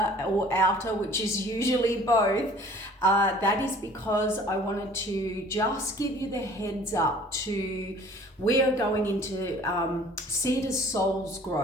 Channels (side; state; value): both; normal; correlation 0.51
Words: or outer, which is usually both, that is because I wanted to just give you the heads up to we are going into seed as soul's